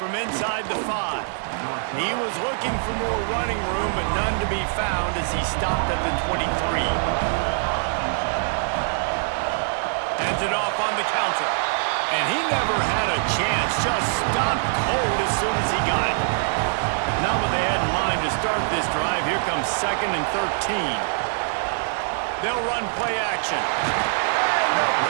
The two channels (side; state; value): left; silent; digital silence